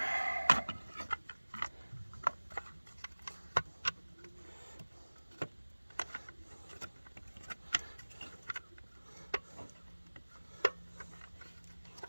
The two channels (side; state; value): both; inverted; correlation -1.00